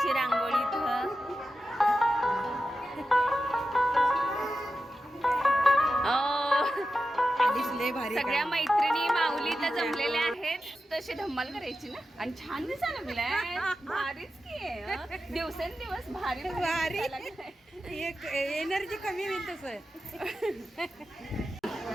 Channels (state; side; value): normal; both; correlation 0.91